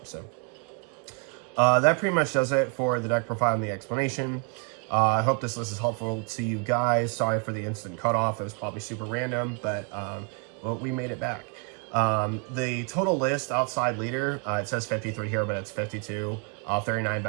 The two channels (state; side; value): quieter; left; 35.4 dB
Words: So that pretty much does it for the deck profile and the explanation. I hope this list is helpful to you guys. Sorry for the instant cutoff. It was probably super random, but well, we made it back. The total list outside leader, it says 53 here, but it's 52. 39